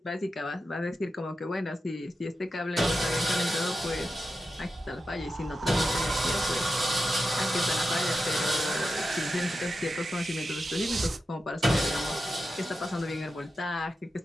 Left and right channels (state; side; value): normal; both; correlation 0.90